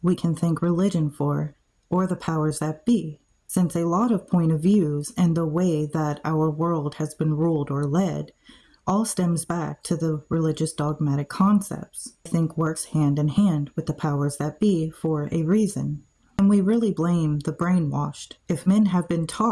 we can thank religion for, or the powers that be, since a lot of point of views and the way that our world has been ruled or led all stems back to the religious dogmatic concepts. I think works hand in hand with the powers that be for a reason. And we really blame the brainwashed if men have been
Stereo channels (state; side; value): identical; both; correlation 1.00